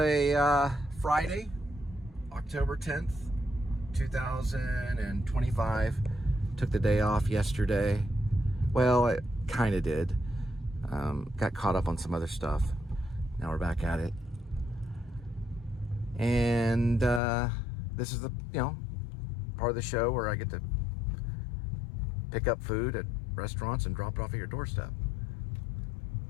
Friday, October 10th, 2025. Took the day off yesterday. Well, I kind of did. Got caught up on some other stuff. Now we're back at it. And this is the, part of the show where I get to pick up food at restaurants and drop it off at your doorstep.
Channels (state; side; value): drops out; right; at 17.2 s